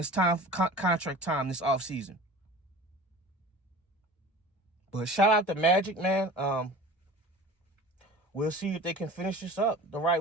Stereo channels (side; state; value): both; normal; correlation 0.39